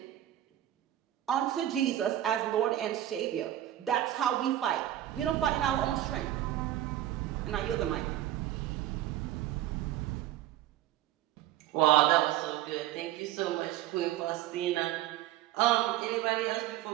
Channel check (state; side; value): quieter; left; 13.2 dB